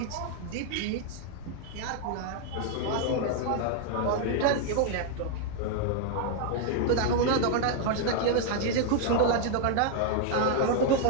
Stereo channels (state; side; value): different; both; correlation 0.00